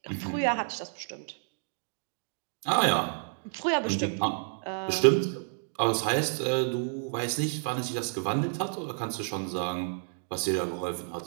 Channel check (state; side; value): silent; left; digital silence